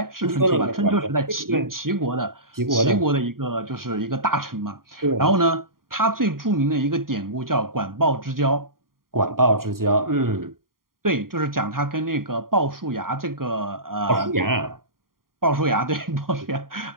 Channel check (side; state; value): left; late; 0.91 ms